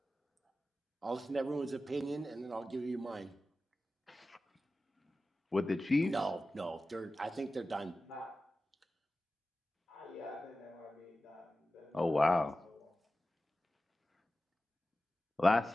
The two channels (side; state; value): both; normal; correlation 0.94